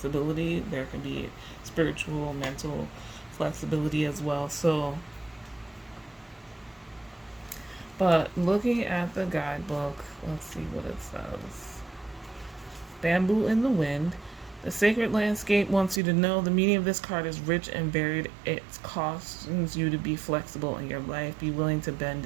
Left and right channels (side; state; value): left; drops out; at 16.0 s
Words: there can be spiritual, mental flexibility as well. So, but looking at the guidebook, let's see what it says. Bamboo in the Wind. The sacred landscape wants you to know the meaning of this card is rich and varied. It cautions you to be flexible in your life, be willing to bend